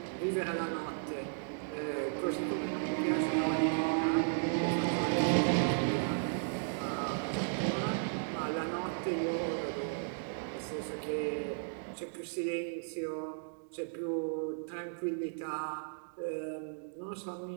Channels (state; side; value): silent; left; digital silence